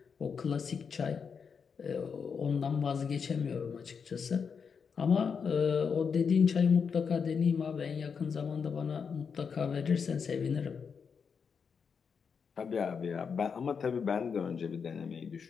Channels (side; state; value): right; quieter; 6.2 dB